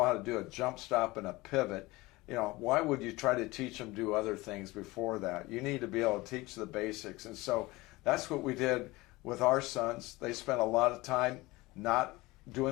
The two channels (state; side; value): quieter; right; 21.1 dB